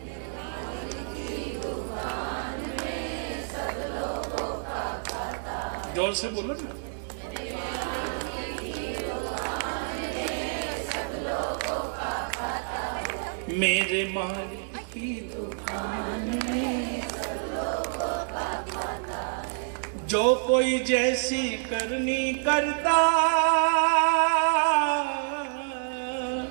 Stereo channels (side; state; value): left; silent; 59 dB below the other